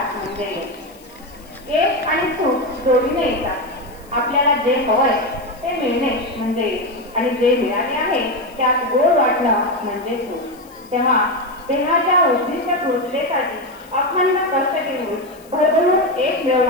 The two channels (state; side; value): noise; left; hiss, 26 dB below the sound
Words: म्हणजे यश आणि सुख जोडीने येतात. आपल्याला जे हवंय ते मिळणे म्हणजे यश आणि जे मिळाले आहे त्यात गोड वाटणं म्हणजे सुख. तेव्हा देहाच्या उद्दिष्ट पूर्ततेसाठी अखंड कष्ट घेऊन भरभरून यश